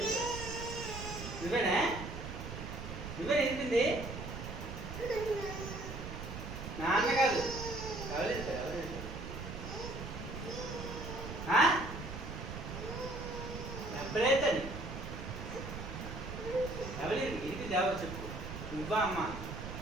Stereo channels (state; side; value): noise; right; rumble, 8 dB below the sound